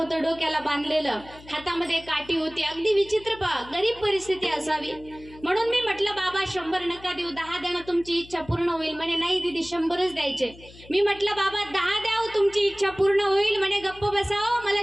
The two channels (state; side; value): noise; left; hum, 21 dB below the sound